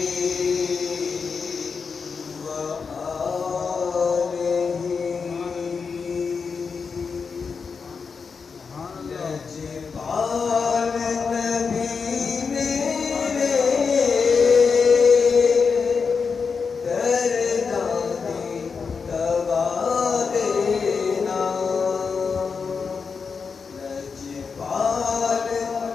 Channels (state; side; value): quieter; right; 5.4 dB